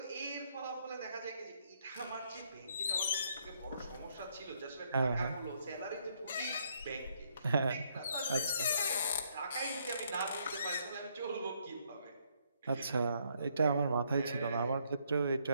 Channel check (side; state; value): both; inverted; correlation -0.71